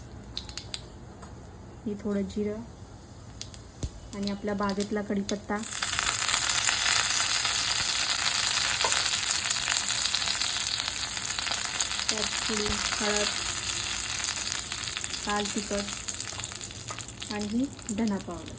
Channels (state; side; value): identical; both; correlation 1.00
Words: ही थोडं जिरं आणि आपल्या बागेतला कढीपत्ता, त्यात थोडी हळद, लाल तिखट आणि ही धना